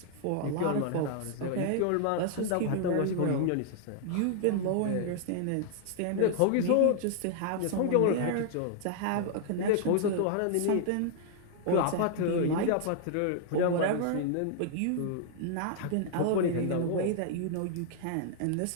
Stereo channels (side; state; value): both; different; correlation -0.01